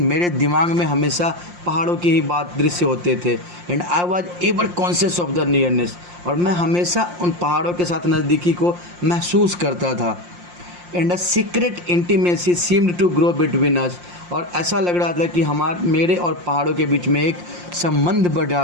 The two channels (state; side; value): late; left; 5.7 ms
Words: मेरे दिमाग में हमेशा पहाड़ों की ही बात दृश्य होते थे। And I was ever conscious of the nearness, और मैं हमेशा उन पहाड़ों के साथ नज़दीकी को महसूस करता था। And a secret intimacy seemed to grow between us, और ऐसा लग रहा था कि मेरे और पहाड़ों के बीच में एक संबंध